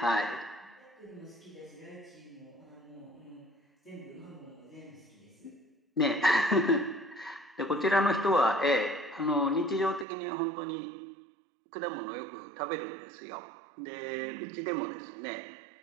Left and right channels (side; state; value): left; drops out; at 10.1 s